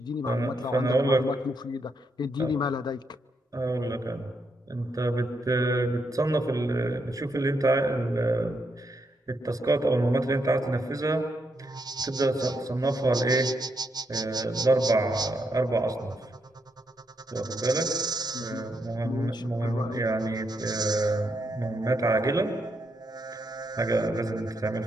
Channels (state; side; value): normal; both; correlation 0.80